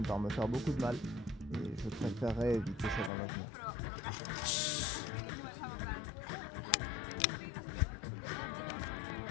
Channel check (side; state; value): right; drops out; at 3.1 s